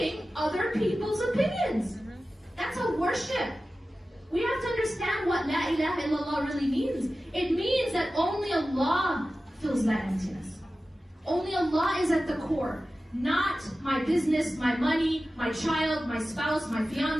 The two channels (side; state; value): both; normal; correlation 0.95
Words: other people's opinions. That's a worship. We have to understand what La ilaha illallah really means. It means that only Allah fills that emptiness. Only Allah is at the core. Not my business, my money, my child, my spouse, my